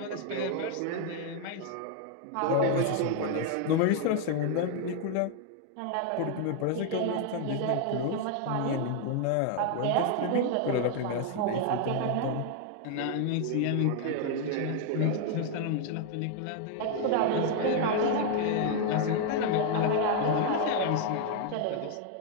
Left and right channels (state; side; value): different; both; correlation 0.00